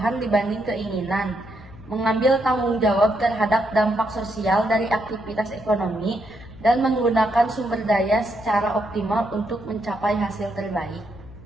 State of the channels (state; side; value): noise; left; hum, 19 dB below the sound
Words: dibanding keinginan. Mengambil tanggung jawab terhadap dampak sosial dari aktivitas ekonomi dan menggunakan sumber daya secara optimal untuk mencapai hasil terbaik.